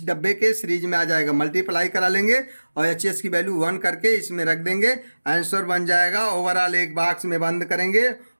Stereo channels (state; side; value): inverted; both; correlation -1.00